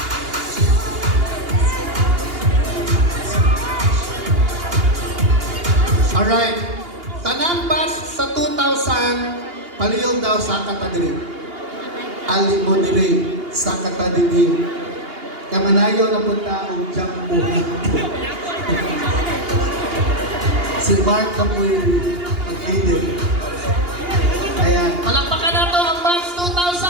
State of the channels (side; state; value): left; late; 2.8 ms